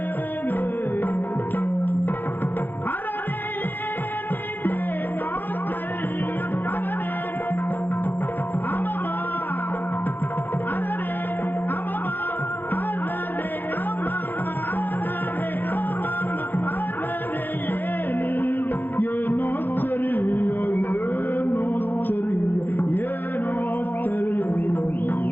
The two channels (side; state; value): right; late; 0.090 ms